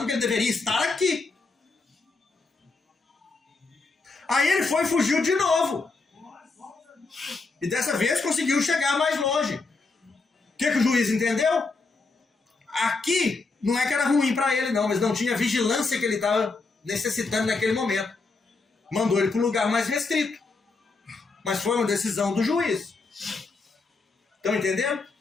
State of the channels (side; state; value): right; quieter; 3.9 dB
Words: que ele deveria estar aqui. Aí ele foi e fugiu de novo. E dessa vez conseguiu chegar mais longe. O que o juiz entendeu? Aqui não é que era ruim para ele não, mas não tinha a vigilância que ele estava necessitando naquele momento. Mandou ele para um lugar mais restrito. Mas foi uma decisão do juiz. Estão entendendo?